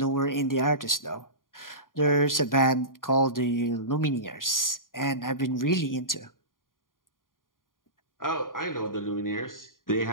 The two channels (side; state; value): right; late; 0.90 ms